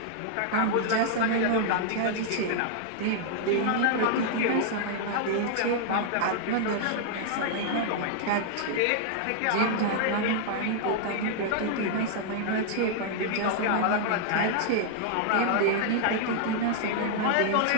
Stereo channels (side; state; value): both; different; correlation -0.01